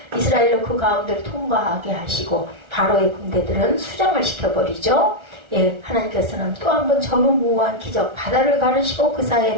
이스라엘로 그 가운데를 통과하게 하시고 바로의 군대들은 수장을 시켜버리죠. 예, 하나님께서는 또 한 번 전무후무한 기적, 바다를 가르시고 그 사이에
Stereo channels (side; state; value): left; late; 1.3 ms